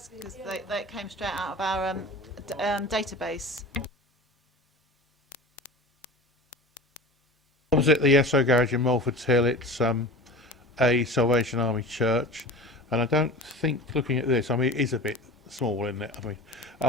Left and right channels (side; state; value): both; normal; correlation 0.34